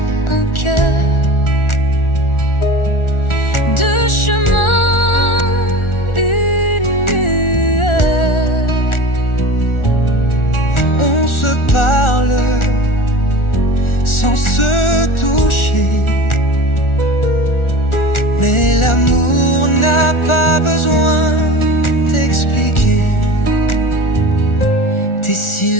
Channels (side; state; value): right; late; 1.4 ms